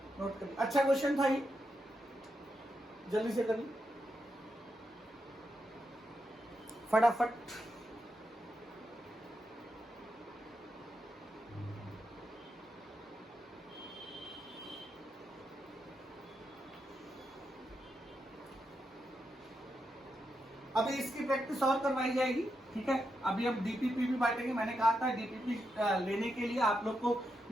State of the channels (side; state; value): both; normal; correlation 0.84